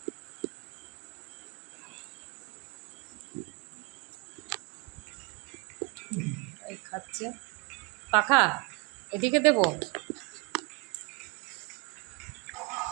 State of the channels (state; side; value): quieter; left; 30.1 dB